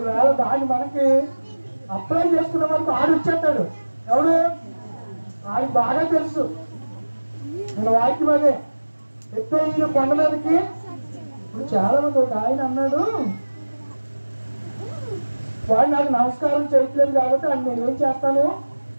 దాన్ని మనకి అప్లై చేసుకున్న వరకు ఆడు వచ్చేస్తాడు. ఎవడు? ఆయనకు బాగా తెలుసు మన వాక్యం అదే. ఎత్తైన కొండ మీదకి ఇప్పుడు చాలా మంది ఒక ఆయన అన్నాడు, వాడు నాకు నమస్కారం చేయట్లేదు కాబట్టి ఆయన నేను ఏం చేస్తాను?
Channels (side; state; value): both; inverted; correlation -1.00